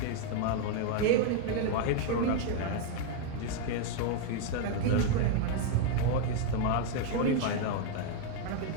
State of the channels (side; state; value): both; different; correlation 0.00